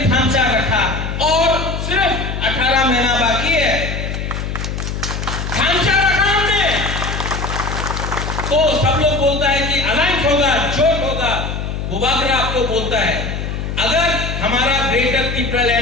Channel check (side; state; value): left; noise; hum, 4 dB below the sound